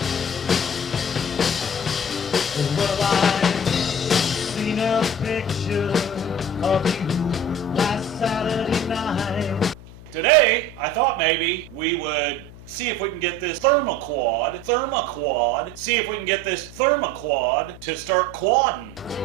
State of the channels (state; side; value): noise; left; hum, 18 dB below the sound